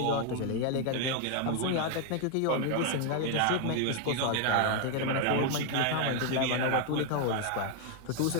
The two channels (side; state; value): both; different; correlation 0.00